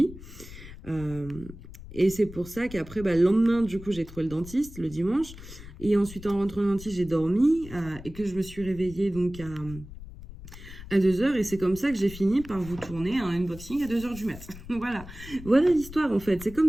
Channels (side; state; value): left; noise; rumble, 15 dB below the sound